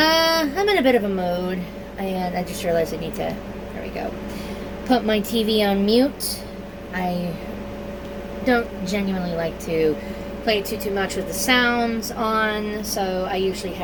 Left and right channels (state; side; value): identical; both; correlation 1.00